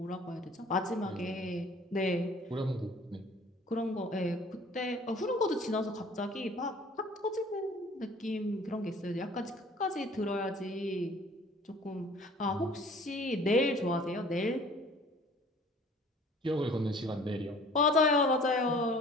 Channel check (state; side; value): normal; both; correlation 0.51